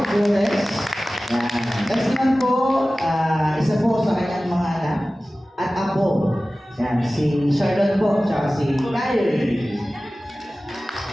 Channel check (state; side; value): normal; both; correlation 0.97